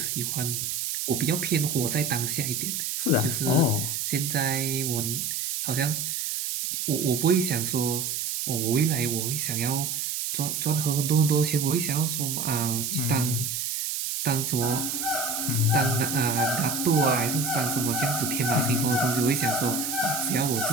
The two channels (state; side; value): noise; right; hiss, 2 dB below the sound